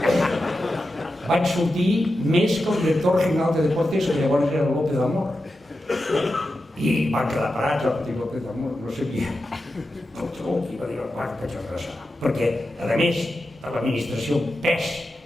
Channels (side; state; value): both; normal; correlation 0.90